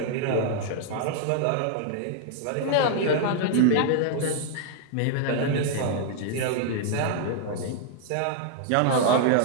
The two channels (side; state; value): both; different; correlation -0.01